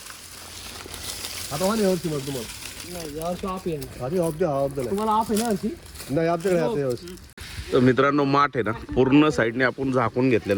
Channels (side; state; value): both; identical; correlation 1.00